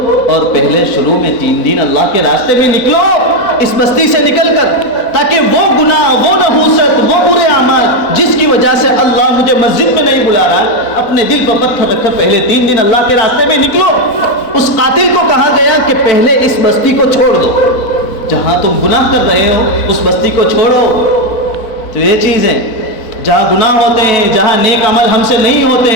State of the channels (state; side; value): late; right; 4.0 ms